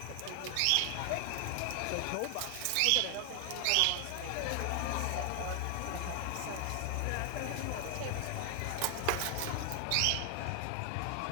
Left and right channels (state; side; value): different; both; correlation 0.00